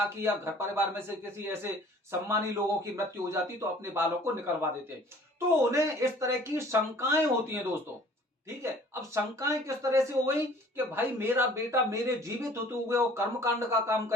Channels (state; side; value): normal; both; correlation 0.51